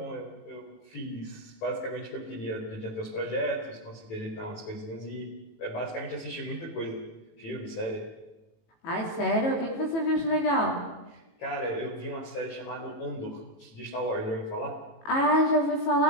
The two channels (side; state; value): right; late; 18 ms